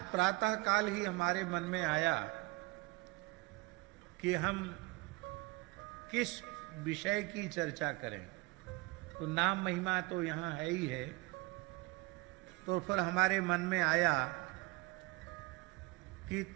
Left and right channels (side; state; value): left; quieter; 22.6 dB